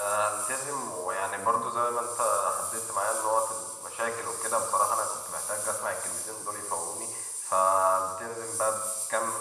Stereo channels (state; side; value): identical; both; correlation 1.00